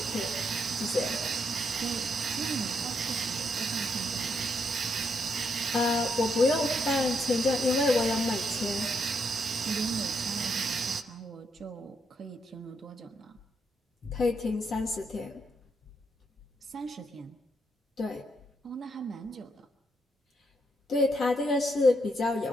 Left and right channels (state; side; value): normal; both; correlation 0.77